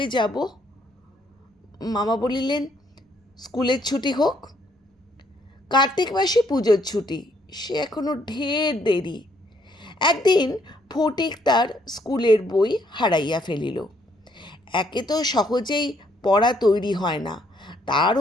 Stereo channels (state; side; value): normal; both; correlation 0.69